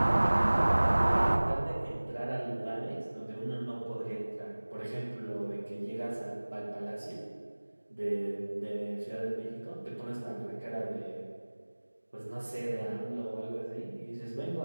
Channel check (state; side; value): inverted; both; correlation -1.00